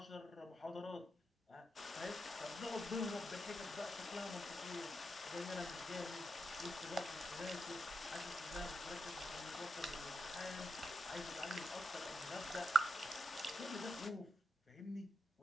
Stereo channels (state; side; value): normal; both; correlation 0.85